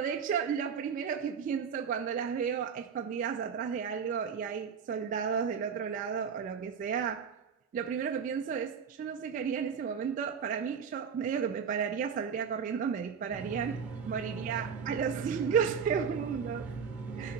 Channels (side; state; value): left; quieter; 6.7 dB